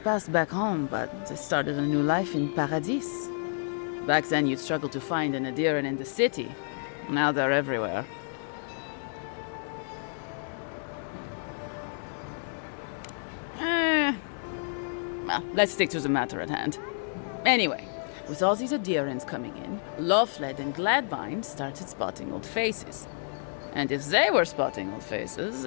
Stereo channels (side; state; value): right; silent; digital silence